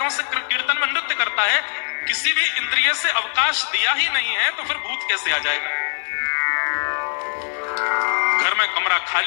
से कीर्तन में नृत्य करता है। किसी भी इंद्रिय से अवकाश दिया ही नहीं है, तो फिर भूत कैसे आ जाएगा? घर में कमरा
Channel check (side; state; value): right; silent; digital silence